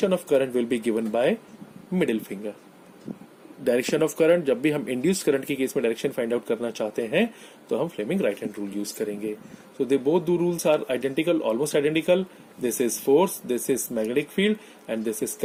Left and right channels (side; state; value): both; identical; correlation 1.00